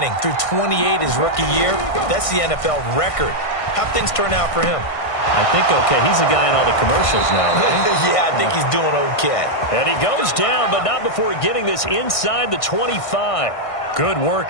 Threw 28 his rookie year. That's the NFL record. How'd things turn out for him? I think okay. He's a guy in all the commercials now, right? Yeah, I think he's doing okay. And he goes down, but not before getting this inside the 25. Good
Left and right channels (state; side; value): late; right; 1.5 ms